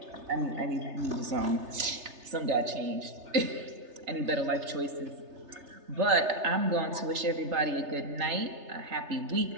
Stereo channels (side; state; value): left; late; 3.3 ms